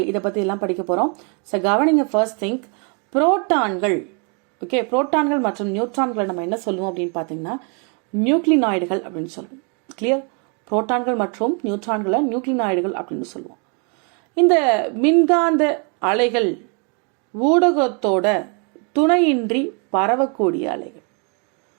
இதை பற்றி எல்லாம் படிக்க போகிறோம். ஸோ கவனிங்க, ஃபர்ஸ்ட் திங்க், புரோட்டான்கள், ஓகே, புரோட்டான்கள் மற்றும் நியூட்ரான்களை நம்ம என்ன சொல்லுவோம் அப்படின்னு பார்த்தீங்கன்னா நியூக்ளினாய்டுகள் அப்படின்னு சொல்லுவோம். கிளியர்? புரோட்டான்கள் மற்றும் நியூட்ரான்களை நியூக்ளினாய்டுகள் அப்படின்னு சொல்லுவோம். இந்த மின்காந்த அலைகள் ஊடகத்தோட துணையின்றி பரவக்கூடிய அலைகள்.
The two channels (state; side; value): quieter; left; 37.1 dB